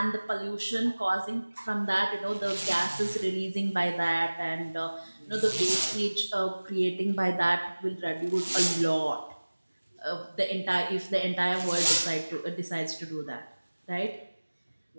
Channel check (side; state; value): both; inverted; correlation -1.00